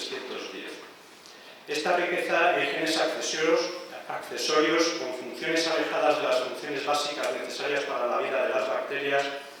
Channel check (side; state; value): both; identical; correlation 1.00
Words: Esta riqueza en genes accesorios con funciones alejadas de las funciones básicas necesarias para la vida de las bacterias